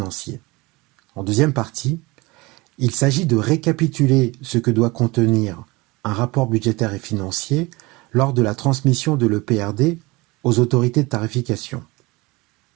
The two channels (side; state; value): left; quieter; 23.3 dB